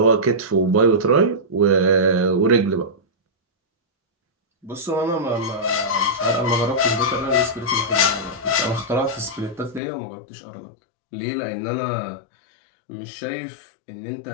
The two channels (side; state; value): right; drops out; at 9.8 s